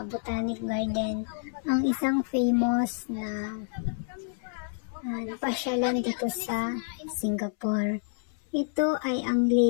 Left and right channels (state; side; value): silent; right; 59 dB below the other